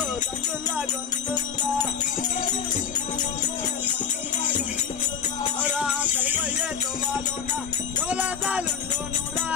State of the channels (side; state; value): right; quieter; 7.3 dB